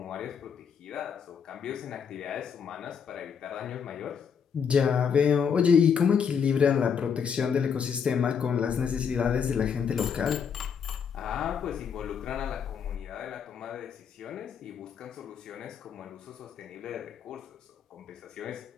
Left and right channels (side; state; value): right; quieter; 6.9 dB